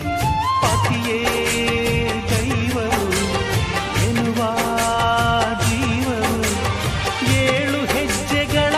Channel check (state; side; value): identical; both; correlation 1.00